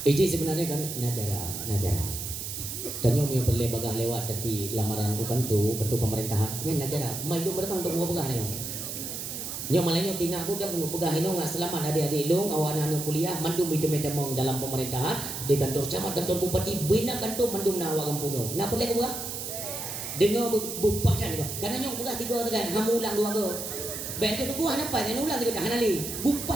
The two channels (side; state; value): right; noise; hiss, 6 dB below the sound